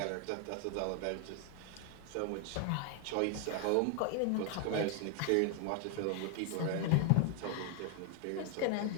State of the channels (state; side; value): different; both; correlation 0.00